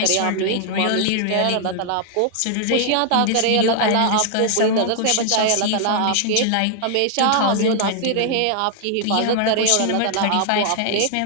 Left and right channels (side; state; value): both; different; correlation 0.00